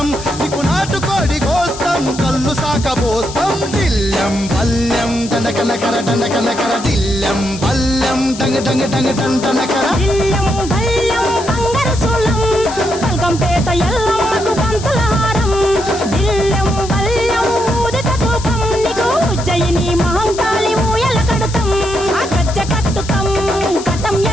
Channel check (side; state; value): left; noise; hiss, 13 dB below the sound